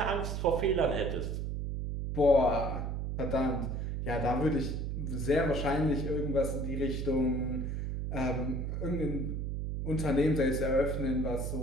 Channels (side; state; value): right; noise; hum, 2 dB below the sound